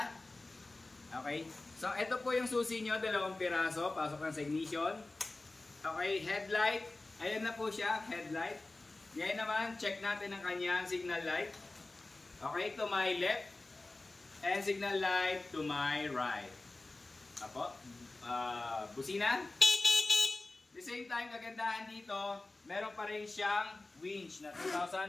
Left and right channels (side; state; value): right; quieter; 3.1 dB